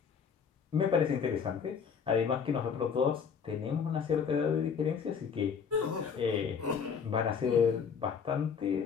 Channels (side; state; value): right; quieter; 6.5 dB